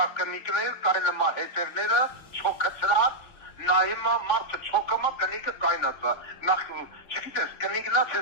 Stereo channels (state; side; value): late; right; 3.5 ms